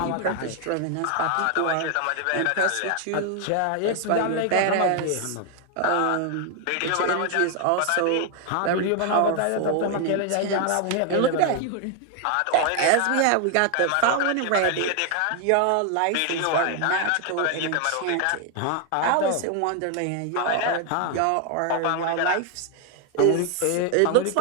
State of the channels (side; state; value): both; different; correlation 0.00